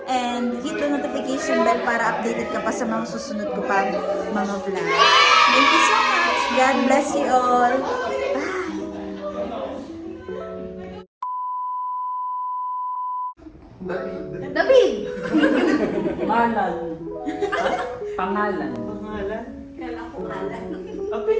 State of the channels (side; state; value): both; identical; correlation 1.00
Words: And hit the notification bell para updated ka pa sa mga susunod ko pa mga vlog. Thank you so much. God bless you all. Bye. David. Pangalan. Pangalan. Pangalan?